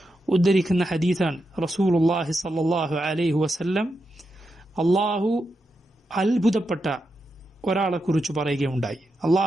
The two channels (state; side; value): normal; both; correlation 0.86